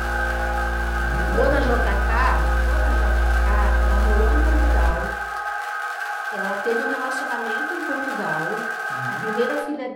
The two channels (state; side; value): identical; both; correlation 1.00